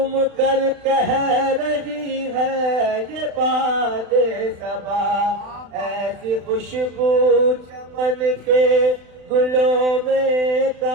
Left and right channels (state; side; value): late; left; 35 ms